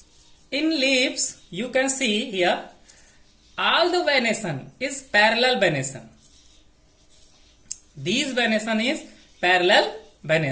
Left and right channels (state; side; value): identical; both; correlation 1.00